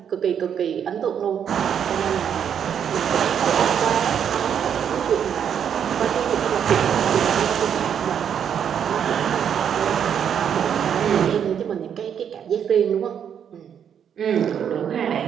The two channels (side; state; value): left; quieter; 8.4 dB